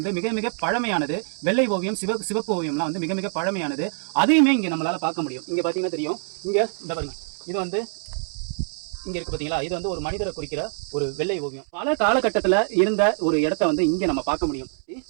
மிக மிக பழமையானது. வெள்ளை ஓவியம், சிவப்பு ஓவியம்லாம் வந்து மிக மிக பழமையானது. அதையுமே இங்க நம்மளால பார்க்க முடியும். இங்க பாத்தீங்கன்னா தெரியும், இங்க இந்த பாருங்க, இது வந்து இங்க இருக்கு பாத்தீங்களா, இது வந்து ஒரு மனிதரை குறிக்கிற ஒரு வெள்ளை ஓவியம். பல காலகட்டத்துல இருந்த ஒரு இடத்த வந்து இங்க நம்ம பார்க்க முடியும்.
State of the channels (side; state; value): left; silent; 62 dB below the other